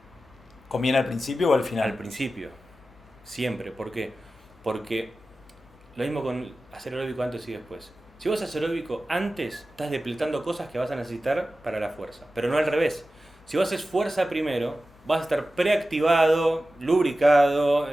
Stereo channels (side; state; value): left; noise; hum, 28 dB below the sound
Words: ¿Conviene al principio o al final? Al principio, siempre. ¿Por qué? Porque lo mismo con hacer aeróbico antes y después. Si vos haces aeróbico antes, estás depletando cosas que vas a necesitar para la fuerza, pero no al revés. Si vos haces fuerza primero, vas a estar preactivado, lubricado,